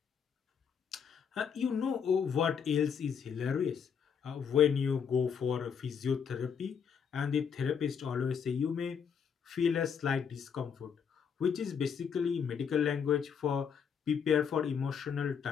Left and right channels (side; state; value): right; quieter; 7.0 dB